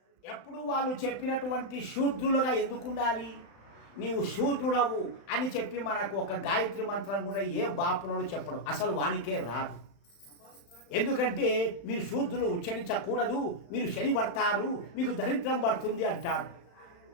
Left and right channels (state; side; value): late; right; 35 ms